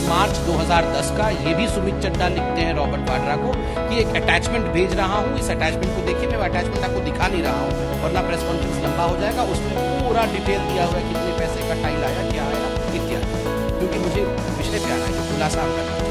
मार्च 2010 का। ये भी सुमित चड्डा लिखते हैं रॉबर्ट वाड्रा को कि एक अटैचमेंट भेज रहा हूं, इस अटैचमेंट को देखिए। मैं अटैचमेंट आपको दिखा नहीं रहा हूं वरना प्रेस कॉन्फ्रेंस लंबा हो जाएगा। उसमें पूरा डिटेल दिया हुआ है, कितने पैसे का टाइल आया, क्या आया इत्यादि, क्योंकि मुझे विषय पे आना है, खुलासा हम करना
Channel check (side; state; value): both; identical; correlation 1.00